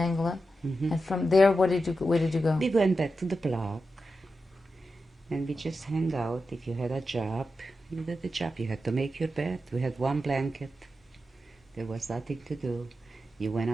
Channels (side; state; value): both; normal; correlation 0.89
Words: and from there, where did you go? We went back to the block, and we just hang out. If you had a job, you did the job. You had to make your bed. We had one blanket. There was nothing to do. You went